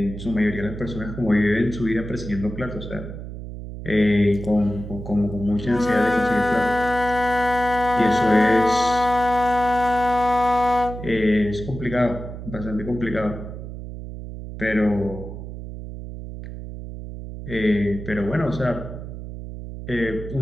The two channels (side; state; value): right; noise; hum, 10 dB below the sound